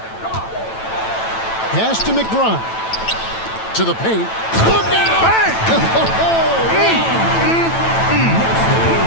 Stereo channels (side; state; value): right; late; 9.0 ms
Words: Pass to McBride. To the paint. Look out! Bang!